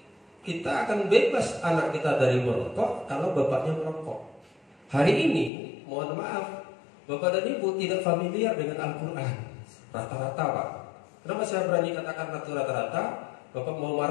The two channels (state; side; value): drops out; right; at 5.5 s